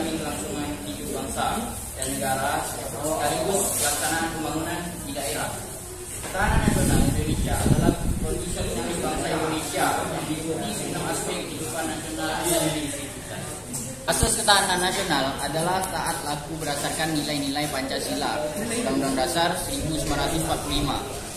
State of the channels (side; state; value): both; identical; correlation 1.00